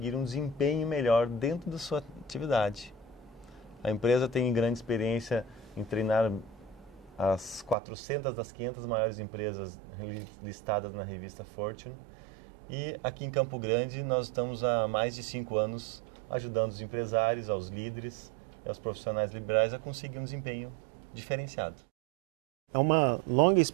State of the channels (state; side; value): drops out; left; at 7.8 s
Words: um desempenho melhor dentro da sua atividade. A empresa tem grande experiência em treinar as 400 das 500 maiores empresas listadas na revista Fortune. E aqui em Campo Grande nós estamos há mais de 5 anos ajudando os empresários, aos líderes e aos profissionais liberais a conseguir um desempenho diferenciado. É uma longa